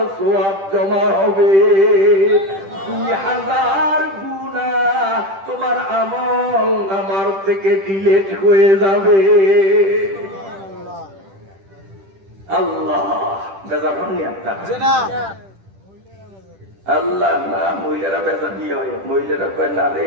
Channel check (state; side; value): late; left; 10 ms